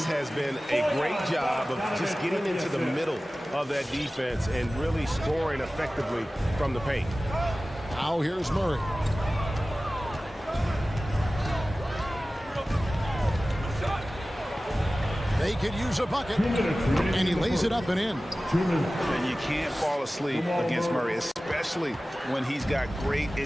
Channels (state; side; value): normal; both; correlation 0.96